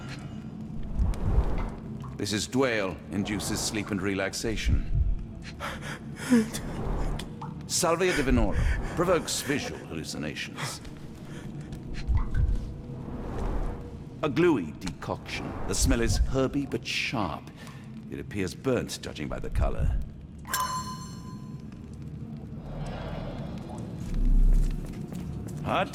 This is Dwale, induces sleep and relaxation. Salvia divinorum, provokes visual hallucinations. A gluey decoction. The smell is herby but sharp. It appears burnt, judging by the color. Hard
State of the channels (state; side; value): identical; both; correlation 1.00